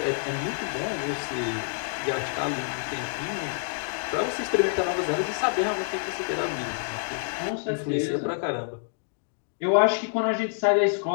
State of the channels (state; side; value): silent; right; digital silence